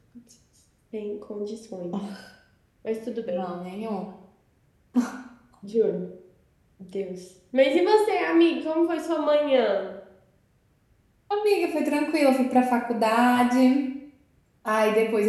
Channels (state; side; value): identical; both; correlation 1.00